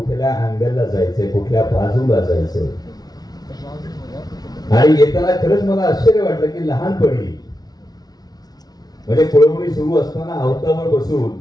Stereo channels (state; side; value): late; right; 0.19 ms